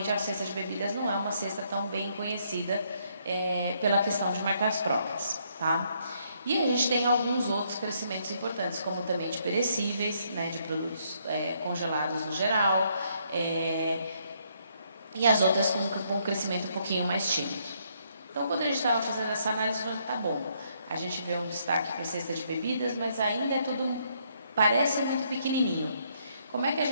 a cesta de bebidas não é uma cesta tão bem conhecida pela questão de marcas próprias, tá? E a gente tem alguns outros crescimentos importantes, como também de perecíveis, né, de produtos congelados no geral, e as outras com um crescimento um pouquinho mais tímido. Então, quando a gente estava fazendo essa análise, eu falei, tá bom, a gente vê um destaque para a cesta de bebidas, mas ainda é tudo, parece muito pequenininho. Como é que a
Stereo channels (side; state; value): both; inverted; correlation -0.71